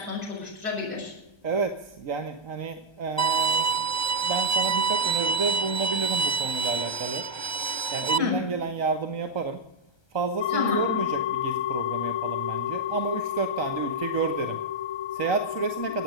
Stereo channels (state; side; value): late; right; 1.3 ms